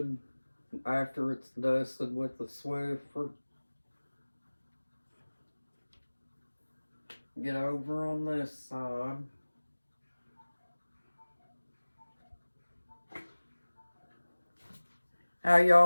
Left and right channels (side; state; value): both; inverted; correlation -1.00